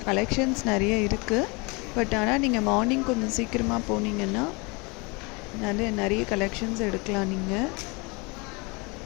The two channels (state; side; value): quieter; right; 28.6 dB